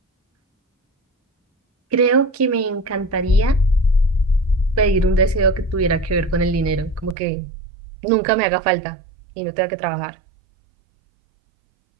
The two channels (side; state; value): left; drops out; at 7.2 s